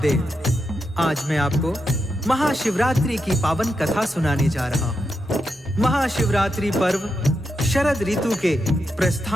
आज मैं आपको महाशिवरात्रि की पावन कथा सुनाने जा रहा हूँ। महाशिवरात्रि पर्व शरद ऋतु के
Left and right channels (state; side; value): normal; both; correlation 0.85